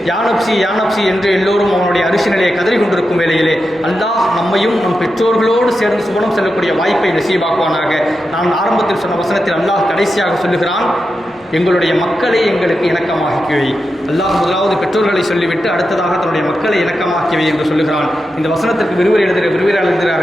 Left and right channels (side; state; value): both; normal; correlation 0.89